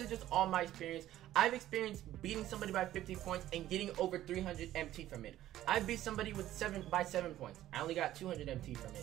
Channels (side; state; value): left; quieter; 13.6 dB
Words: just all my experience. I've experienced beating somebody by 50 points and getting over 300 MT from it. I beat somebody with 7 points. I only got 200 MT from